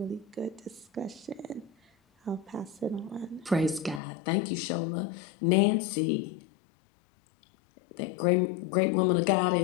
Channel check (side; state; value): right; drops out; at 4.0 s